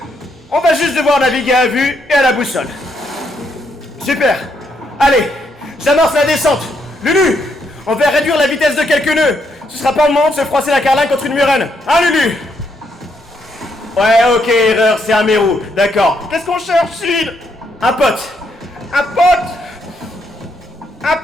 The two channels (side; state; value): both; normal; correlation 0.76